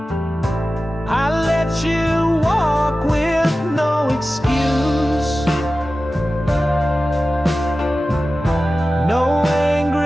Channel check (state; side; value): normal; both; correlation 0.95